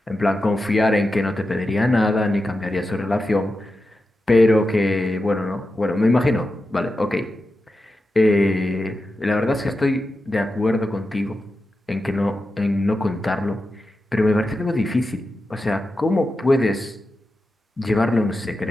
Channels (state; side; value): normal; both; correlation 0.90